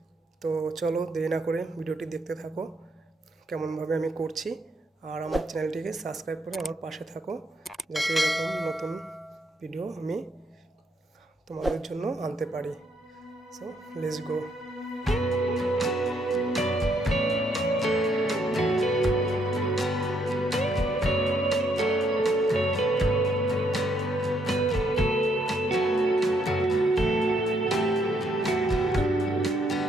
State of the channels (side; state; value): both; normal; correlation 0.73